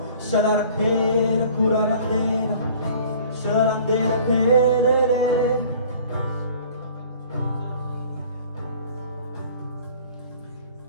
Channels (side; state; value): both; inverted; correlation -0.49